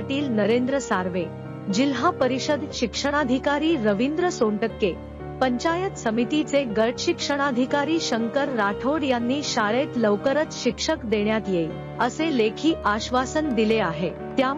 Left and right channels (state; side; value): identical; both; correlation 1.00